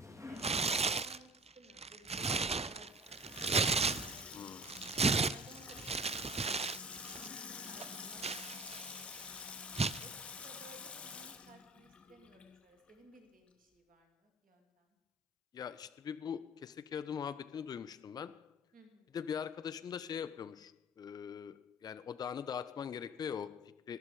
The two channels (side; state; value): both; normal; correlation 0.42